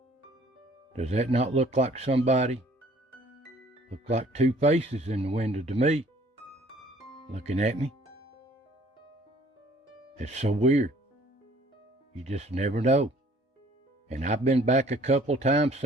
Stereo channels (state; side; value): normal; both; correlation 0.56